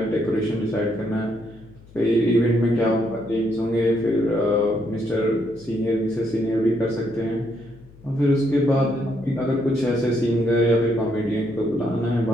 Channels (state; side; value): noise; left; hum, 23 dB below the sound